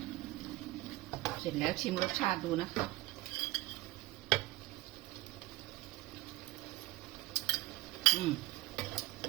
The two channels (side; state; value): left; quieter; 19.3 dB